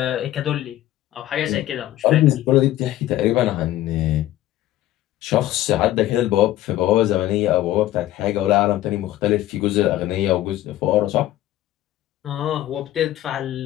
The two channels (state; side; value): quieter; right; 14.2 dB